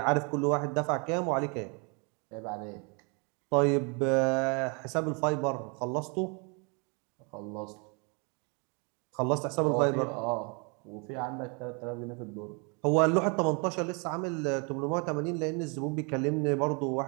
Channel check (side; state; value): left; quieter; 33.8 dB